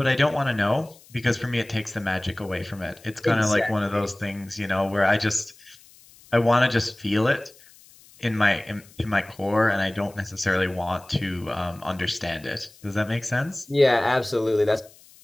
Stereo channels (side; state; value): left; noise; hiss, 25 dB below the sound